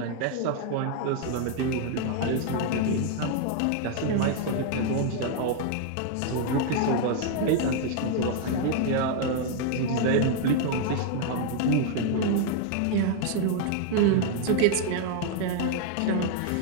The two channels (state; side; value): different; both; correlation 0.00